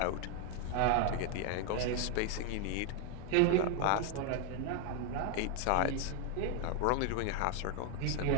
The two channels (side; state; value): both; different; correlation 0.01